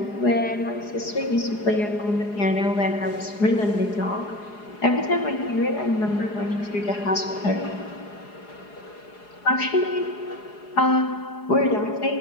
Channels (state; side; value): late; right; 4.8 ms